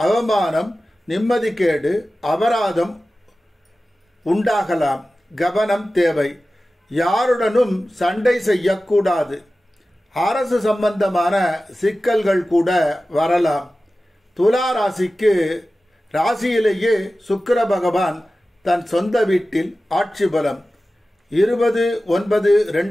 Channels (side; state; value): both; normal; correlation 0.95